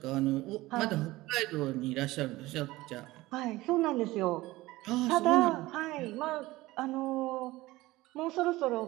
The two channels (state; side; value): quieter; left; 18.7 dB